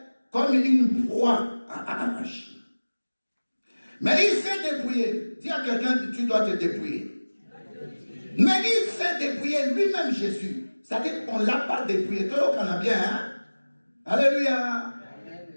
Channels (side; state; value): both; inverted; correlation -1.00